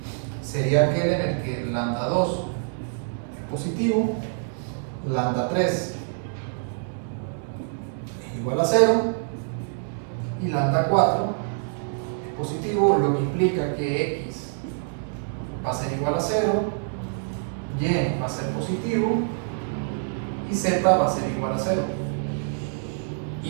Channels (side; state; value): left; silent; digital silence